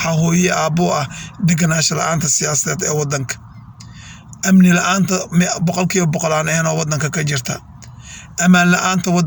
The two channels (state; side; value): identical; both; correlation 1.00